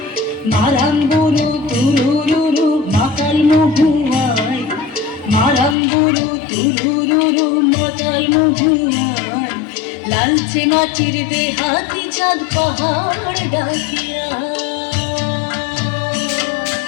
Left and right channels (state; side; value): drops out; right; at 5.8 s